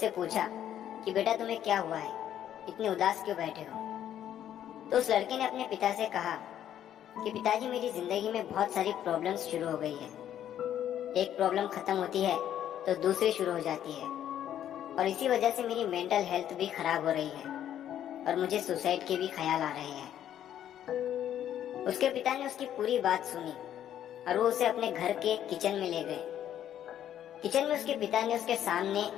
पूछा कि बेटा तुम्हें क्या हुआ है, इतने उदास क्यों बैठे हो। तो उस लड़के ने अपने पिता से कहा कि पिताजी मेरी जिंदगी में बहुत सारी प्रॉब्लम्स शुरू हो गई है। एक प्रॉब्लम खत्म होती है तो दूसरी शुरू हो जाती है और इसी वजह से मेरी मेंटल हेल्थ भी खराब हो रही है और मुझे सुसाइड के भी ख्याल आ रहे हैं। उसके पिता ने उसकी पूरी बात सुनी और वो उसे अपने घर के किचन में ले गए। किचन में उसके पिता ने उसके सामने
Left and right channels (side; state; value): right; quieter; 10.8 dB